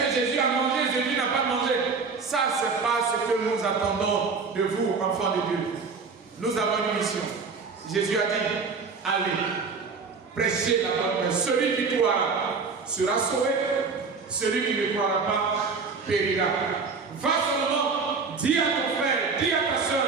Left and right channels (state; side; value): quieter; left; 4.8 dB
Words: Jésus a mangé, Jésus n'a pas mangé? Ça, ce n'est pas ce que nous attendons de vous, enfants de Dieu. Nous avons une mission. Jésus a dit, allez, prêchez la bonne nouvelle. Celui qui croira sera sauvé. Celui qui ne croira pas périra. Va seulement, dis à ton frère, dis à ta soeur,